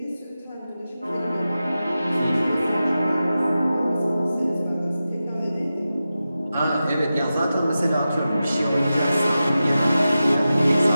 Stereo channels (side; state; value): both; inverted; correlation -0.93